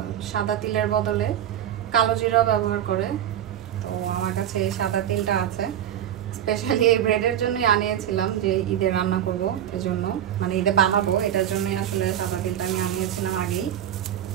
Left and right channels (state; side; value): quieter; left; 10.6 dB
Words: সাদা তিলের বদলে কালো জিরা ব্যবহার করে, তো আমার কাছে এই সাদা তিলটা আছে। স্পেশালি এই ব্রেডের জন্যই আনিয়েছিলাম, যে ঈদে রান্না করবো এজন্য, মানে ঈদে বানাবো এটার জন্যই আসলে সাদা তিলটা আমি আনিয়েছিলাম আগেই।